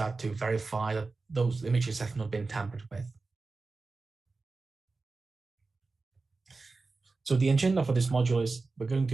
to verify that those images have not been tampered with. So the agenda for this module is we're going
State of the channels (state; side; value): quieter; left; 3.8 dB